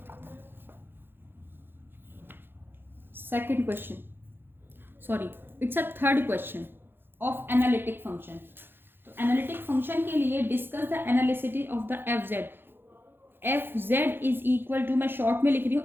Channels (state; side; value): late; left; 0.10 ms